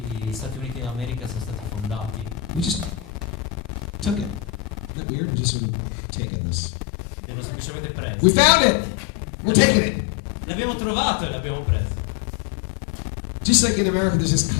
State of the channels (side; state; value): right; drops out; at 4.9 s